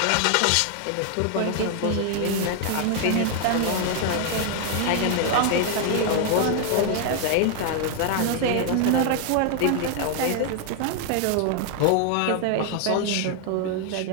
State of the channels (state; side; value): different; both; correlation 0.00